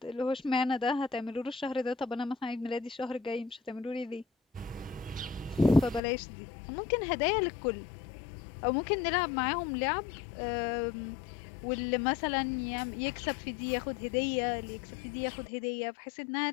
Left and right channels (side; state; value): right; drops out; at 6.0 s